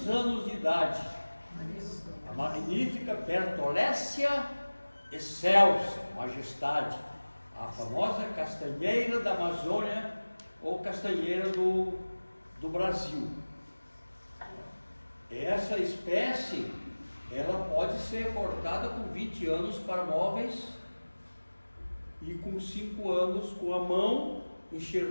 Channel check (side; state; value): both; inverted; correlation -1.00